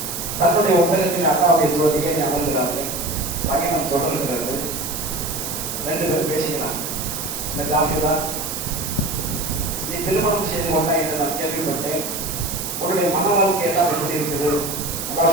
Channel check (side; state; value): right; noise; hiss, 5 dB below the sound